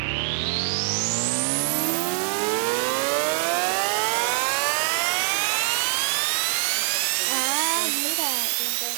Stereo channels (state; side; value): silent; left; digital silence